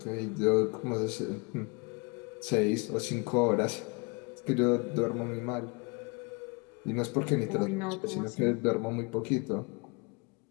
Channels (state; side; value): quieter; right; 30.6 dB